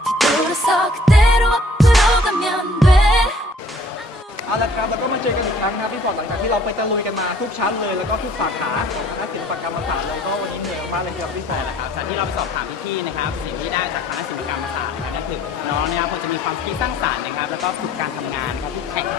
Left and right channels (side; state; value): both; normal; correlation 0.57